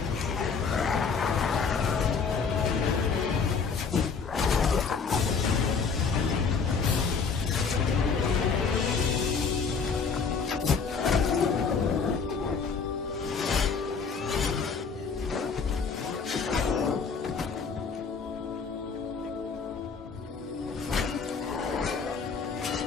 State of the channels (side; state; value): right; quieter; 5.4 dB